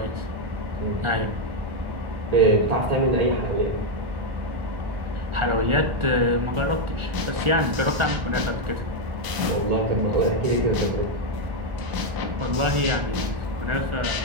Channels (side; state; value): left; late; 1.0 ms